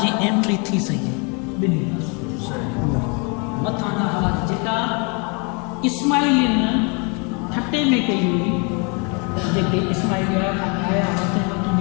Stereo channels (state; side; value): quieter; right; 33.3 dB